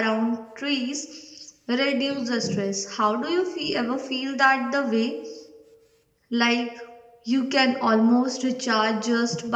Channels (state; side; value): identical; both; correlation 1.00